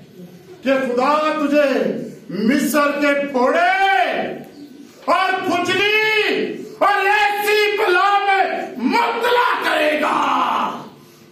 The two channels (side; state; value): both; identical; correlation 1.00